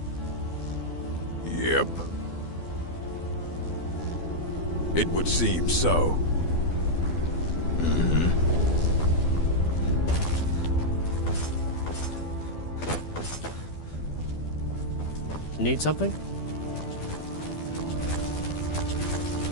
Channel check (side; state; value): right; late; 12 ms